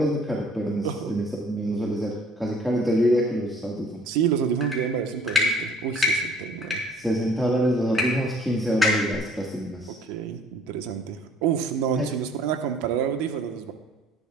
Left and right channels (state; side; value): normal; both; correlation 0.55